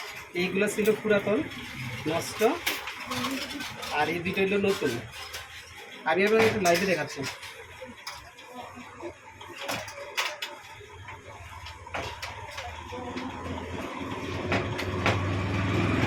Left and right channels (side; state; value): both; identical; correlation 1.00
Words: এইগুলো ছিল পুরাতন, নষ্ট, আর এই দুটো হলো নতুন। আমি আপনাকে একটু লাইভে দেখাচ্ছি।